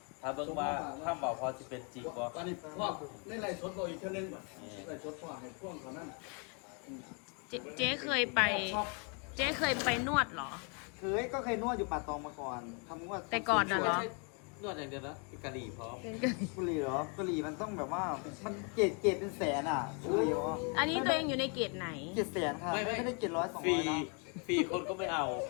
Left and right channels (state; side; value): quieter; right; 36.7 dB